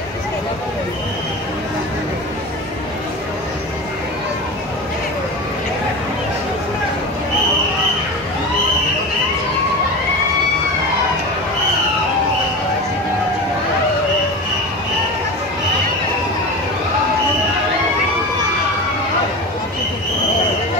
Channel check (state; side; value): normal; both; correlation 0.28